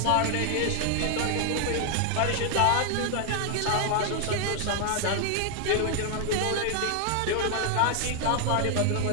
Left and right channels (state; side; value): different; both; correlation 0.00